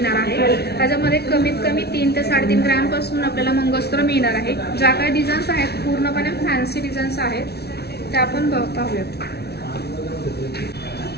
आहे। त्याच्यामध्ये कमीत कमी 3 ते 3.5 ग्रॅमपासून आपल्याला मंगळसूत्र मिळणार आहे। ज्या काही डिझाईन्स आहेत पूर्णपणे फॅन्सी डिझाईन्स आहेत, त्या आपण पाहूयात।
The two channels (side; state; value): right; late; 0.48 ms